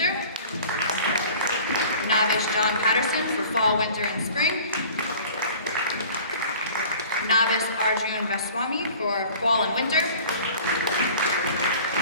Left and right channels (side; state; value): both; inverted; correlation -0.45